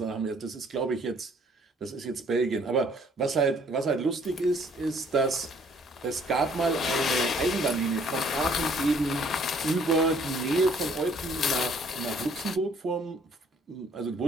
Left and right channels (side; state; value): both; normal; correlation 0.61